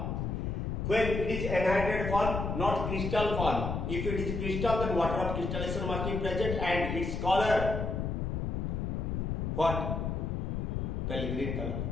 When it is anhydrated form, not crystal form. If it is crystal, then water of crystallization must be present and its color what? Pale green color,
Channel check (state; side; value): noise; left; rumble, 2 dB below the sound